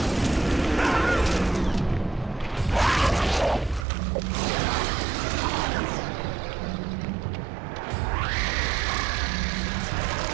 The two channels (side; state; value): left; drops out; at 3.9 s